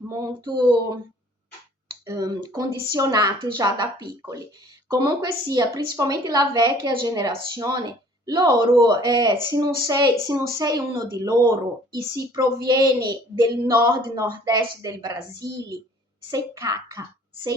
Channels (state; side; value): normal; both; correlation 0.54